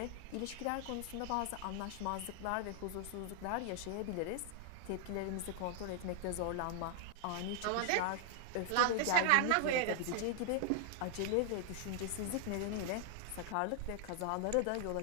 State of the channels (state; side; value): different; both; correlation 0.00